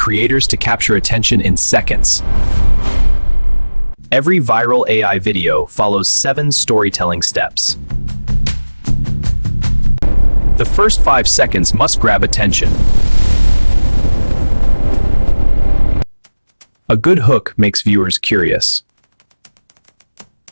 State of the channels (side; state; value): both; inverted; correlation -1.00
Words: to capture attention in seconds. Every viral AI video follows 7 storytelling steps. The first 5 seconds must grab attention. A good hook makes viewers curious.